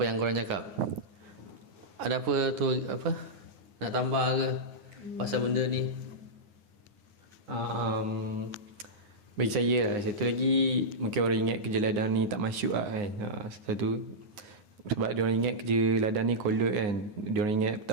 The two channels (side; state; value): left; late; 9.6 ms